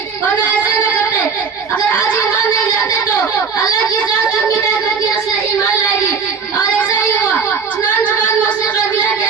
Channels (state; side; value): quieter; left; 5.6 dB